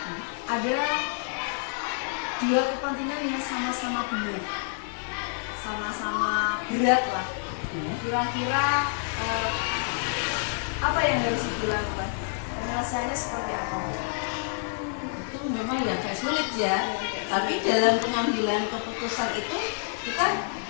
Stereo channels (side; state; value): right; silent; 59 dB below the other